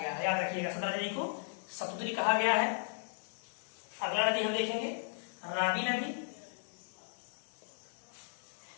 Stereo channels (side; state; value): right; silent; digital silence